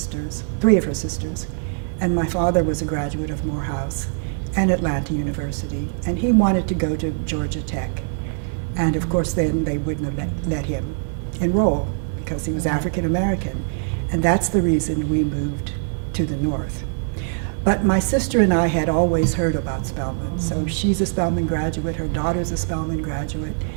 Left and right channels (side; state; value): left; silent; 64 dB below the other